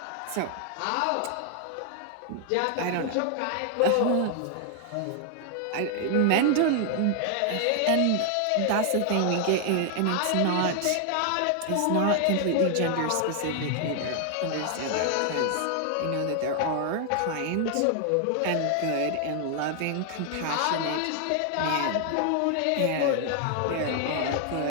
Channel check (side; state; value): both; different; correlation 0.00